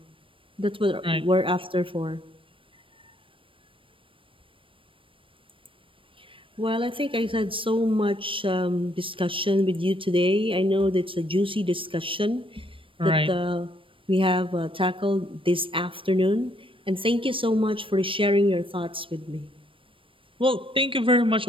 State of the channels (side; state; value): left; late; 0.25 ms